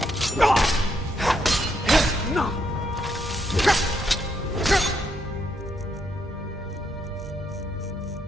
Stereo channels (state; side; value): normal; both; correlation 0.76